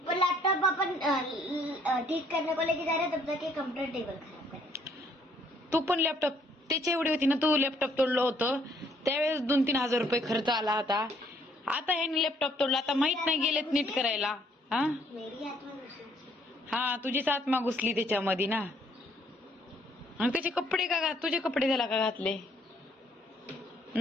लैपटॉप अपन ठीक करने को लेके जा रहे तब तक कंप्यूटर टेबल खराब करे. तू पण लॅपटॉप त्याची एवढी होती ना. तू लॅपटॉप तोडलं होतं त्यावेळेस 2-3 हजार रुपये खर्च आला होता. आता ह्याने लॅपटॉप तोडला. आता माहित नाही गेलेत नीट करायला. हा मेरी आत्मा घुसली. हा तुझीच आत्मा घुसली त्याच्यामध्ये ना. आणि त्याचे कपडे का तुझे कपडे त्याला का घातले?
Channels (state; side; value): normal; both; correlation 0.65